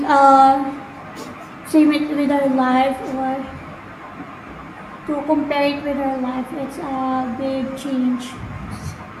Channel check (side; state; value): both; identical; correlation 1.00